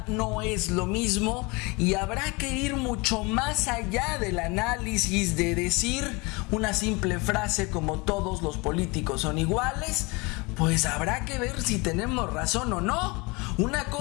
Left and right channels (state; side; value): quieter; right; 26.7 dB